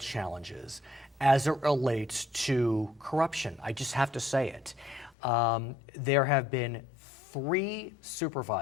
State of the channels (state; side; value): drops out; right; at 5.2 s